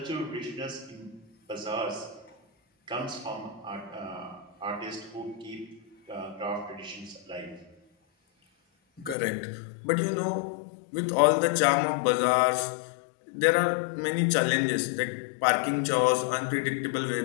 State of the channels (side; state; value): right; drops out; at 9.2 s